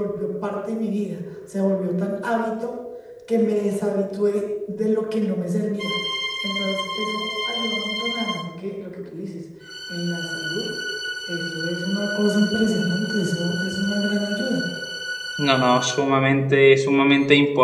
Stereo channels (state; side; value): identical; both; correlation 1.00